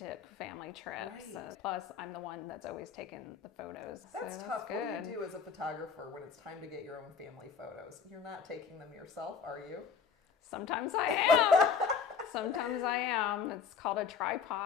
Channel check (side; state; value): right; quieter; 6.3 dB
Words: family trips. Right. Plus, I'm the one that's always taking the photos. That's so tough. Good. What do you do as a photographer when it's time to get your own family photos? You're not taking them yourself, are you? Sometimes I am. Sometimes I am. It's called a